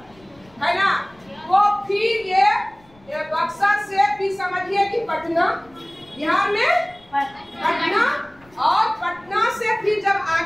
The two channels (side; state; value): left; noise; rumble, 29 dB below the sound